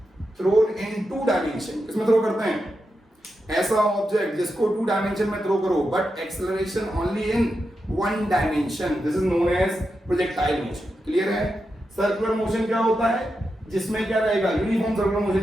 thrown in two dimension. किसमें थ्रो करते हैं? ऐसा ऑब्जेक्ट जिसको टू डायमेंशन में थ्रो करो but acceleration only in one dimension, this is known as projectile motion. Clear है? Circular motion क्या होता है? जिसमें क्या रहेगा? यूनिफॉर्म सर्कुलर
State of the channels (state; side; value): normal; both; correlation 0.88